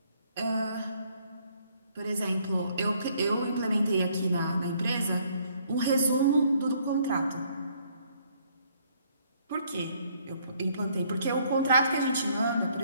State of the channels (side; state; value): both; inverted; correlation -0.66